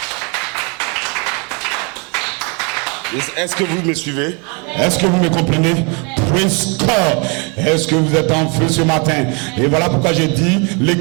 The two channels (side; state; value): left; quieter; 33.1 dB